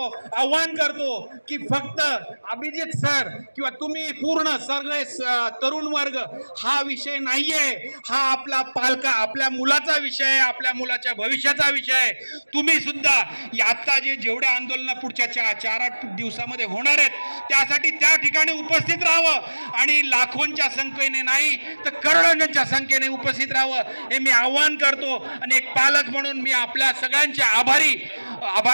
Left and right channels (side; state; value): both; inverted; correlation -1.00